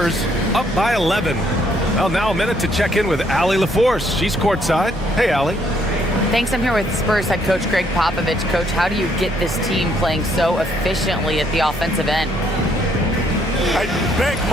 up by 11. Well, now a minute to check in with Allie LaForce. She's courtside. Hey, Allie. Thanks. I'm here with Spurs head coach Greg Popovich. Coach, how do you get this team playing so efficiently at the offensive end? I beg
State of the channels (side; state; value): both; normal; correlation 0.69